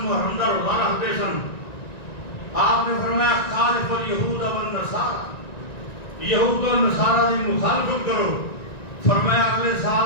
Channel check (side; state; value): right; late; 1.9 ms